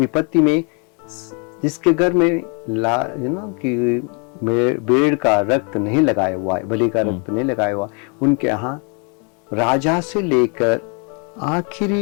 में जिसके घर में कि भेड़ का रक्त नहीं लगाया हुआ है, बलि का रक्त नहीं लगाया हुआ, उनके यहाँ राजा से लेकर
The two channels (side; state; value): right; quieter; 35.9 dB